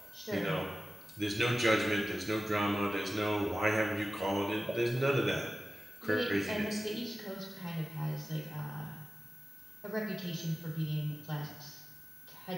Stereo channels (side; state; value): both; normal; correlation 0.95